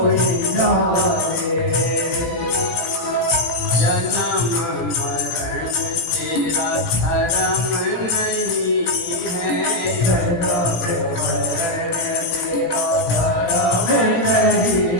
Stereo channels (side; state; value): right; late; 18 ms